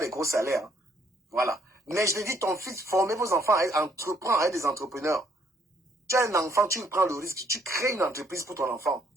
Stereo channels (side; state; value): both; normal; correlation 0.67